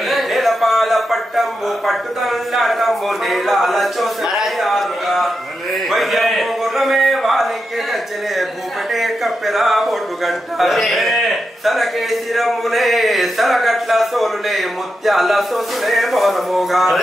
నేలపాల పట్టము పట్టుదల్లాటము నేలాల చూసగా వైద్యము గుర్రమే వానికి గచ్చలే భూపటే కప్పెలా బొట్టు గంట సలకేసిరమునే సలగట్ల సోలులే ముత్యాల సోసులే మోనమోగా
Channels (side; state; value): both; normal; correlation 0.87